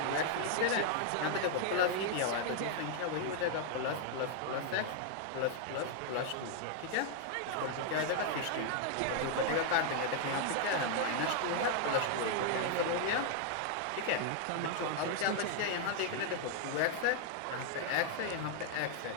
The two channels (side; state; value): both; different; correlation 0.00